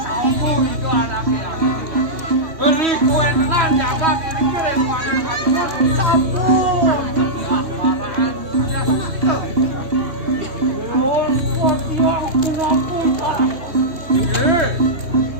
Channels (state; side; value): late; left; 3.0 ms